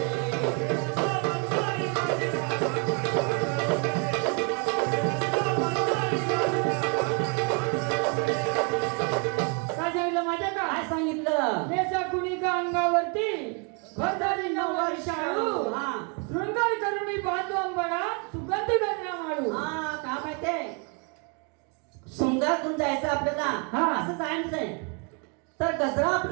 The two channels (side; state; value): left; quieter; 35.0 dB